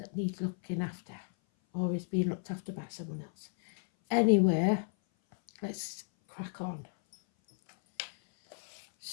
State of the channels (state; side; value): silent; right; 55 dB below the other